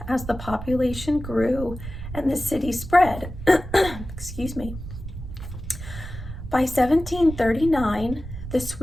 as the population grew and the city spread. Excuse me. By 1739, the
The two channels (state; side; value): noise; right; rumble, 10 dB below the sound